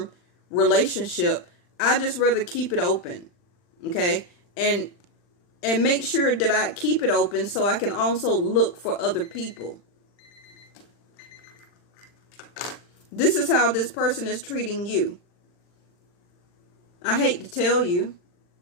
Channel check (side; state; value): right; late; 40 ms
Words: relationship. I just rather keep it open, okay? And make sure that I keep it open so I can also look for other people. This is how this person is treating you. I hate to tell you,